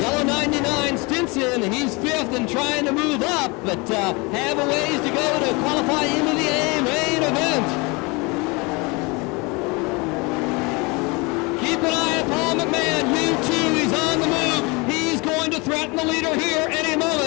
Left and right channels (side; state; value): right; quieter; 27.2 dB